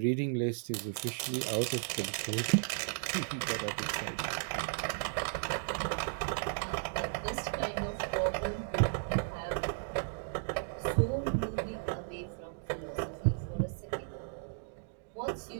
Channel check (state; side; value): silent; left; digital silence